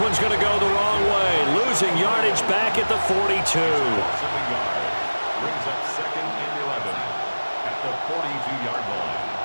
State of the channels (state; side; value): inverted; both; correlation -1.00